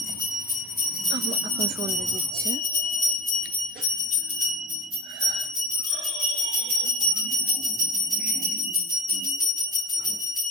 এখন সন্ধ্যে দিচ্ছে।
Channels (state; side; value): normal; both; correlation 0.37